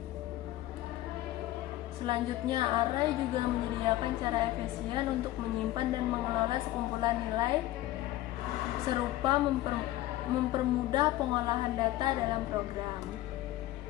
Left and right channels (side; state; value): right; quieter; 15.6 dB